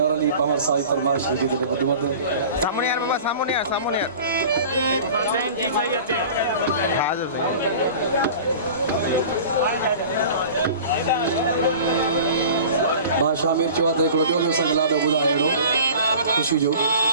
अली पावर साई फरमाशान की तले वदमद Samun यार बाबा samun यार samun यार. Ten जी सही है ते. Kaza. बा शामिर चौथ हिकिड़ो ॿियो बि असांखे लाॾो ॿुधाए अहिड़ो ख़ुशी जो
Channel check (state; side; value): inverted; both; correlation -0.40